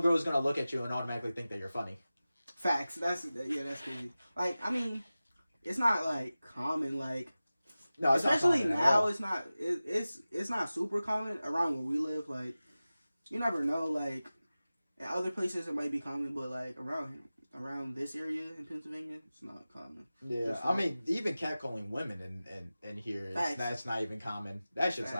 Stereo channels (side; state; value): both; inverted; correlation -0.96